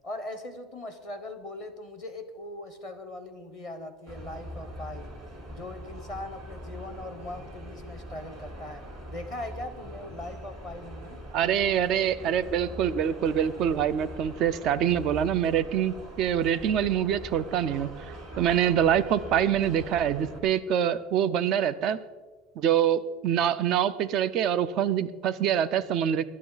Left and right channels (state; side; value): quieter; left; 8.2 dB